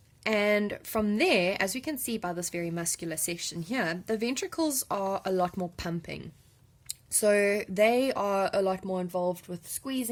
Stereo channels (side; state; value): both; identical; correlation 1.00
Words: And from there, as we can see by this very muscular section here, the ventricles are a lot more pumping. So they are a lot more involved with